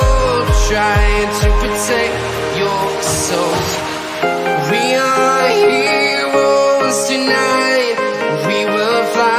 trying to protect your soul. We are heroes tonight. We will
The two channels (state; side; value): identical; both; correlation 1.00